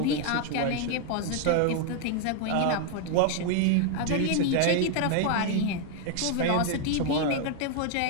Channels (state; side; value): different; both; correlation 0.01